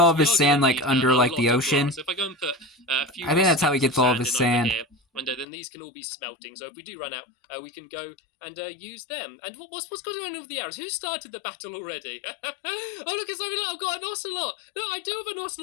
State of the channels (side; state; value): right; drops out; at 5.5 s